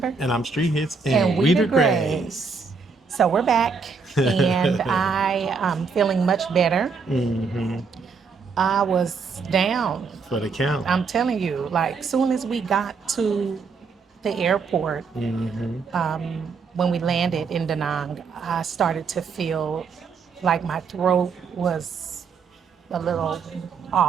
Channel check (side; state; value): left; quieter; 5.0 dB